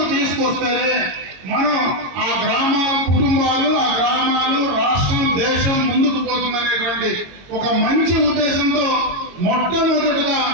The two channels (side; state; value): left; late; 22 ms